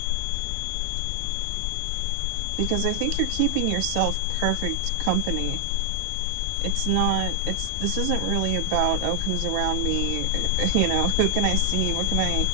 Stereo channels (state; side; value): different; both; correlation 0.00